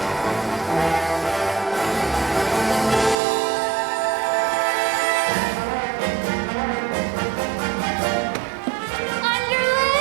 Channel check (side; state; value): left; drops out; at 3.2 s